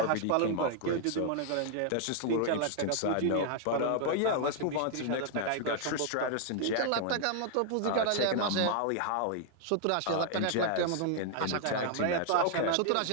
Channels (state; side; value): different; both; correlation 0.00